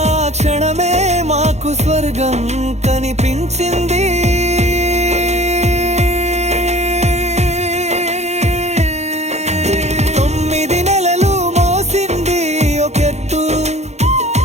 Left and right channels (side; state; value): left; late; 0.32 ms